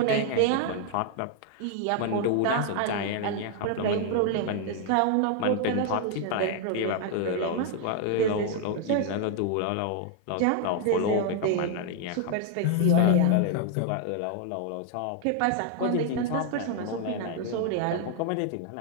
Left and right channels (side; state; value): both; different; correlation 0.00